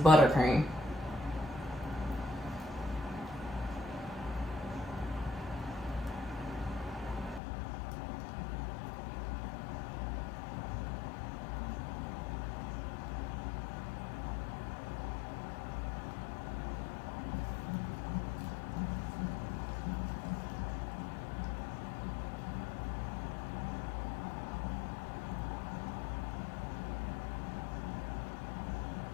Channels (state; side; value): drops out; right; at 7.4 s